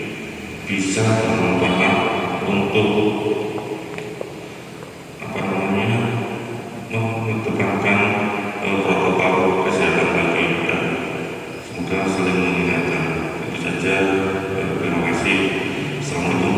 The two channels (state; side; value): identical; both; correlation 1.00